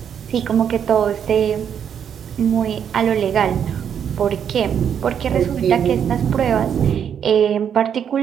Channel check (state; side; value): quieter; left; 8.3 dB